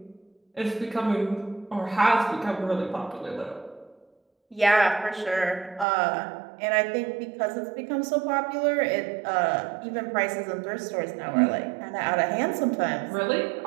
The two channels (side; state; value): left; drops out; at 5.9 s